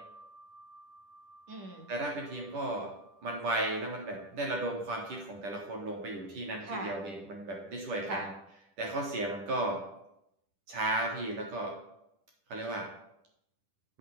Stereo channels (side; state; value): left; late; 10 ms